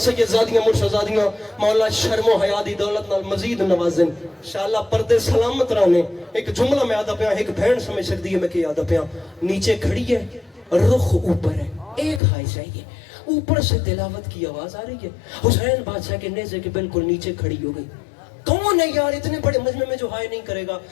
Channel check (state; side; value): drops out; right; at 12.2 s